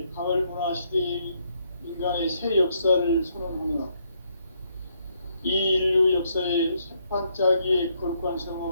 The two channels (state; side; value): inverted; both; correlation -0.73